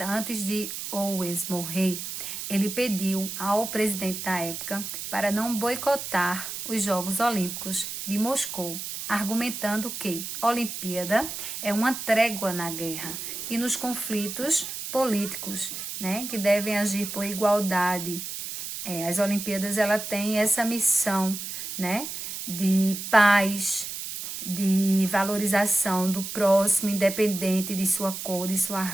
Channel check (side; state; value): right; noise; hiss, 7 dB below the sound